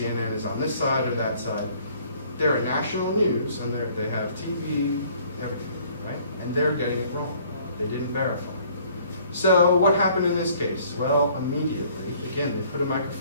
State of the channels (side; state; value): both; inverted; correlation -0.59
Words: is on this side or that side. They're a national news, and they have TV, everything, right? And they're getting it wrong. They didn't verify. So what happened in this case? Well, immediately, again, they put a